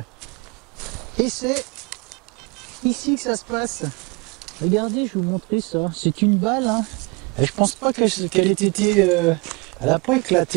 Et c'est ici que ça se passe. Regardez, je vais vous montrer ça. C'est une balle. Hein. Et je pense pas qu'elle ait été... elle n'a pas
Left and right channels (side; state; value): left; quieter; 28.3 dB